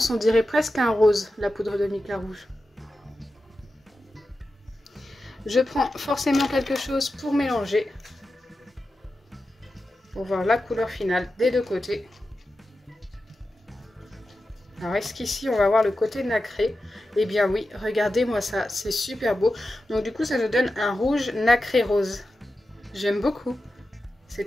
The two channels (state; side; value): normal; both; correlation 0.92